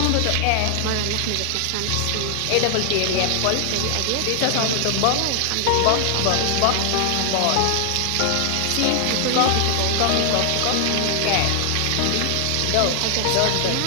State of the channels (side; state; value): both; different; correlation 0.00